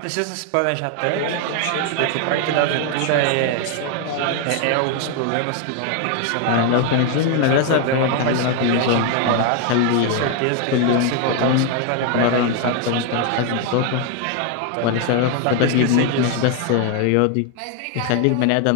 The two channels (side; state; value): both; different; correlation 0.00